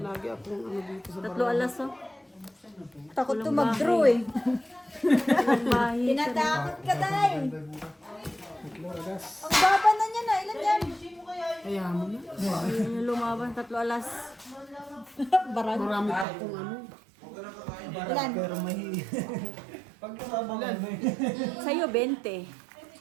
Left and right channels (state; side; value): drops out; left; at 16.2 s